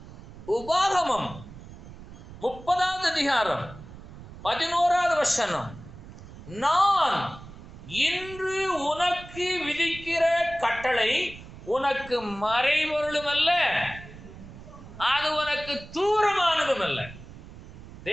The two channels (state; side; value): noise; right; rumble, 16 dB below the sound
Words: உபாகமம் 30வது அதிகாரம் 11வது வசனம், நான் இன்று உனக்கு விதிக்கிற கட்டளை உனக்கு மறைபொருளும் அல்ல, அது உனக்கு தூரமானதும் அல்ல.